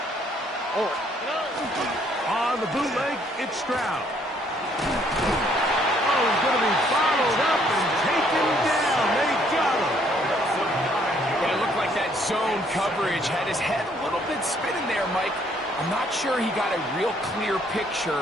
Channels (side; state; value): both; normal; correlation 0.66